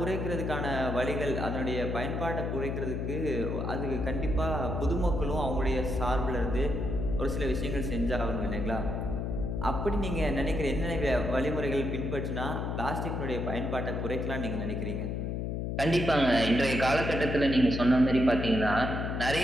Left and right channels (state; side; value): noise; left; hum, 2 dB below the sound